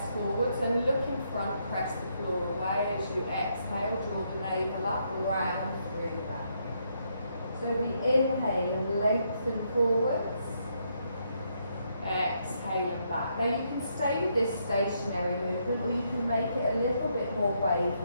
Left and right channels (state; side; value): inverted; both; correlation -0.76